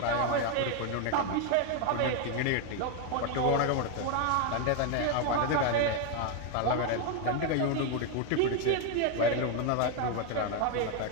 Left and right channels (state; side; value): different; both; correlation 0.01